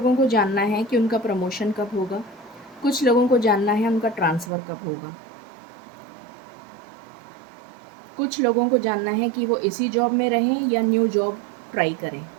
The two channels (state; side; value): drops out; left; at 4.5 s